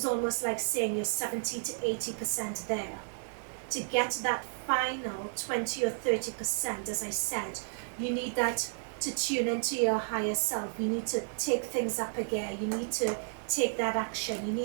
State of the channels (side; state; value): left; silent; 56 dB below the other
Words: almost like saying you're 70 to 80% there. To get that final 20 or 30%, as I said, you need that to tune into your higher self. You need to take things up again. You need to take that action. You